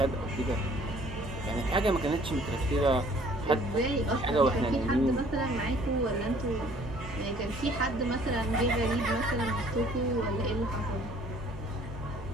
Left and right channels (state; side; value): normal; both; correlation 0.57